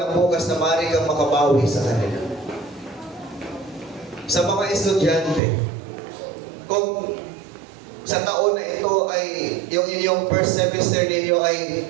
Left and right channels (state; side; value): drops out; left; at 5.4 s